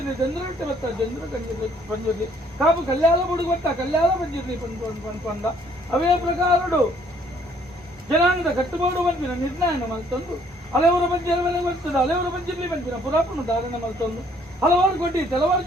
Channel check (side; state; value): both; normal; correlation 0.63